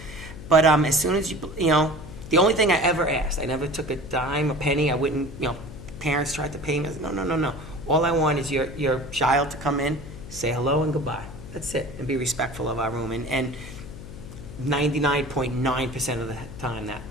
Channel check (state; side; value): noise; left; hum, 13 dB below the sound